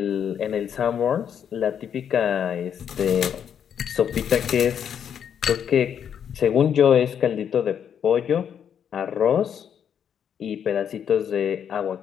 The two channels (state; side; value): quieter; right; 8.4 dB